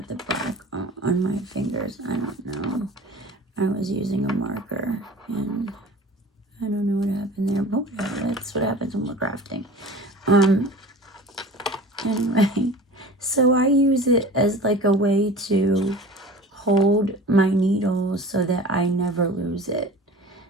the black on my fingers. I don't know. I was using a marker, and I don't know what happened there, but whatever. That's what happens when we're crafting. Anyway, so I use it as like a way to hold my needle so that I never lose it.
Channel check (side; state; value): both; normal; correlation 0.39